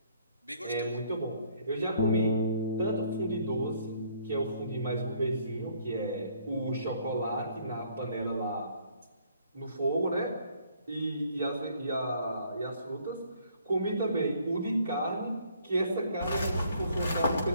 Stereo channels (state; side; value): inverted; both; correlation -0.63